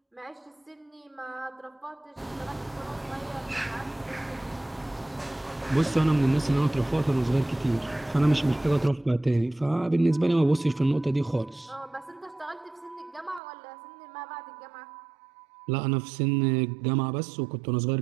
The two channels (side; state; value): left; drops out; at 13.4 s